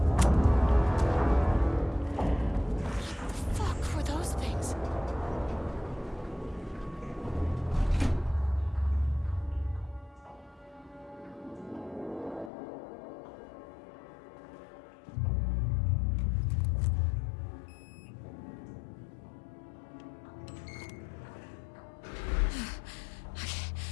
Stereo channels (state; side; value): drops out; right; at 12.5 s